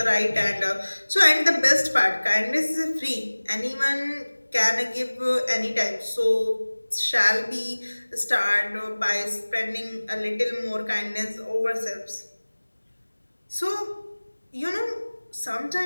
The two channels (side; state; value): both; inverted; correlation -1.00